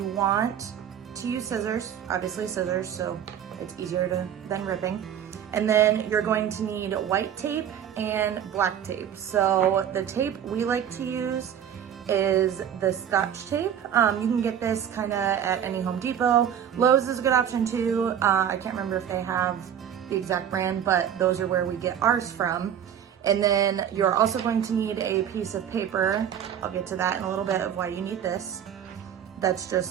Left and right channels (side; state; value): left; quieter; 9.3 dB